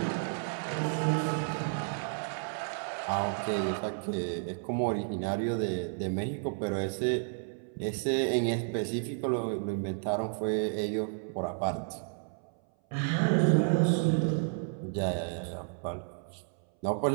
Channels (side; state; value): left; silent; 57 dB below the other